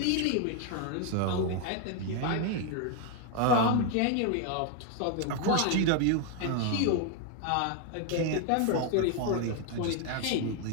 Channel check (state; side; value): different; both; correlation 0.01